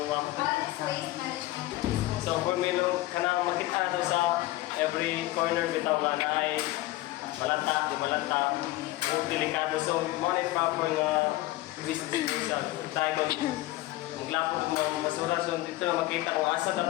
ma'am. What is waste management and disposal? So for me no kanang makita do sa every corner bitaw nga na ay malanta, di malanta, o delikado. So mo na proper nga waste disposal. Tayo kung maglapot mo basura so dito na makita kung asa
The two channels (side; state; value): right; quieter; 17.8 dB